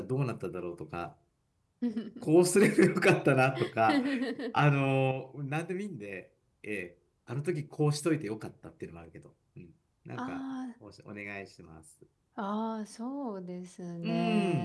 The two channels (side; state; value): both; identical; correlation 1.00